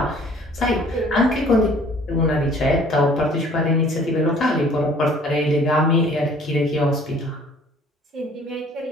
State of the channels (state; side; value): normal; both; correlation 0.54